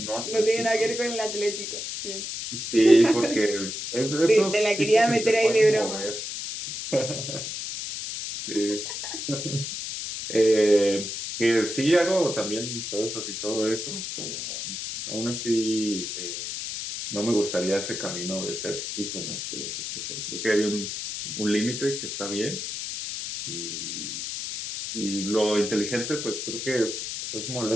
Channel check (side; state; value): left; noise; hiss, 5 dB below the sound